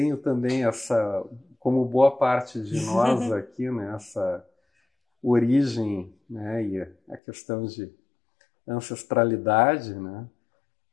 também essa, como boa parte de nós aqui, né, essa origem, né, e a questão de ancestralidade, né,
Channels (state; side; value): drops out; right; at 7.2 s